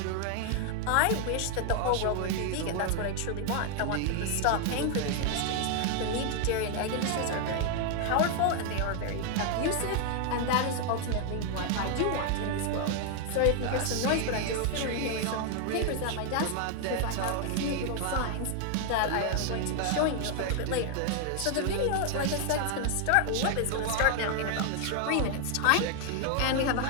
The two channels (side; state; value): both; different; correlation 0.00